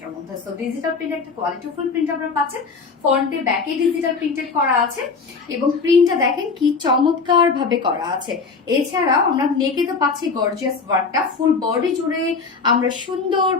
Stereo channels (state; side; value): quieter; right; 4.7 dB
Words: মধ্যে। সো ডিজিটাল প্রিন্ট একটা কোয়ালিটিফুল প্রিন্ট আমরা পাচ্ছেন। ফ্রন্টে ব্যাকে ডিজিটাল প্রিন্টেড করা আছে এবং প্রিন্টটা দেখেন কি চমৎকার ভাবে করা আছে। এছাড়াও আমরা নেকে তো পাচ্ছি গর্জিয়াস ওয়ার্কটা, ফুল বডি জুড়ে আমরা সুন্দর